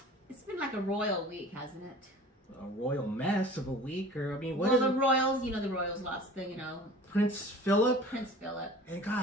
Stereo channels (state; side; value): normal; both; correlation 0.43